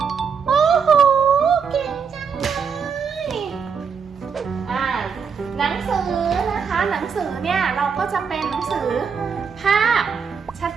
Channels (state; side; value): quieter; left; 6.3 dB